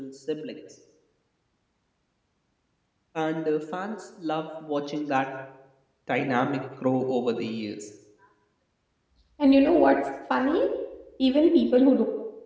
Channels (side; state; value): both; identical; correlation 1.00